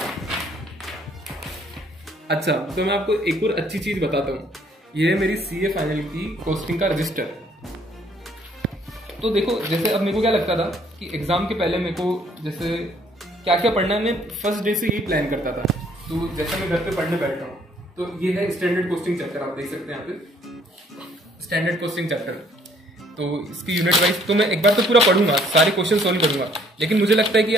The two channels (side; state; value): both; normal; correlation 0.63